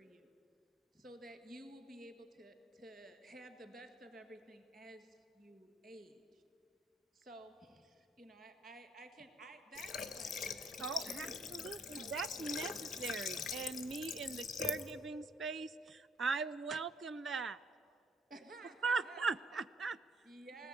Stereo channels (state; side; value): normal; both; correlation 0.66